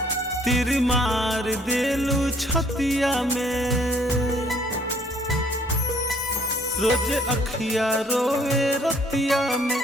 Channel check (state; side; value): normal; both; correlation 0.62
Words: तीर मार देलू छतिया में। रोज अखिया रोवे रतिया में